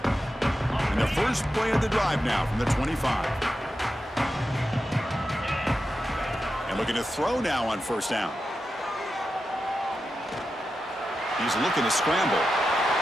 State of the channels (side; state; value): both; normal; correlation 0.90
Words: And the first play of the drive now from the 25. And looking to throw now on first down. He's looking to scramble.